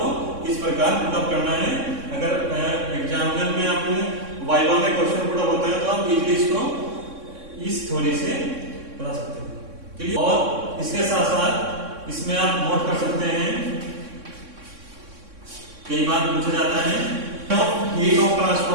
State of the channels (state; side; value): late; left; 3.6 ms